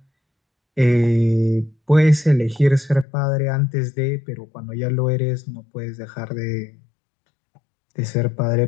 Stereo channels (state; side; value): drops out; right; at 3.1 s